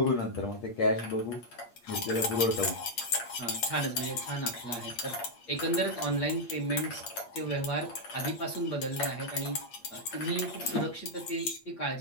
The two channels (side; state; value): right; late; 8.5 ms